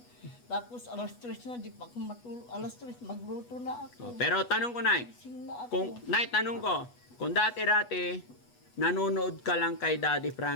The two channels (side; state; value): right; late; 8.2 ms